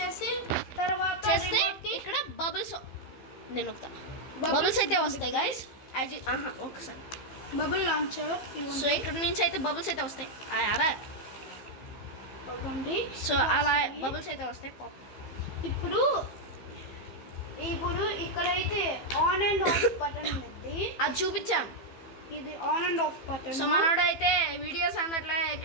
తర్వాత చేస్తే ఇక్కడ బబుల్స్ నేను ఒకతా బబుల్స్ అయితే వస్తాయి గైస్ ఒకసారి బబుల్ లాంచర్ సో ఇక్కడ నుంచి అయితే బబుల్స్ అయితే వస్తాయి అరా ఇవ్వండి. సో అలా బబుల్స్ అయితే వస్తాయి పాప్. ఇప్పుడు ఇక్కడైతే ఆన్ అండ్ ఆఫ్ బటన్ ఉంది, అది చూపించాం. ఇది on and of button. So మనోడు అయితే వీడియోస్ అందట్లే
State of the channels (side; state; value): right; late; 15 ms